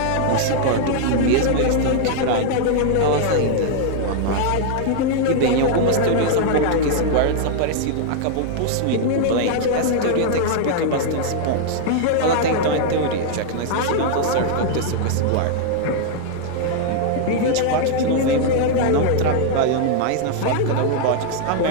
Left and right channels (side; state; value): both; different; correlation -0.01